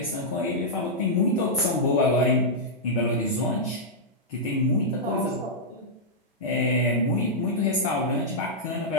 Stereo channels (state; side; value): normal; both; correlation -0.09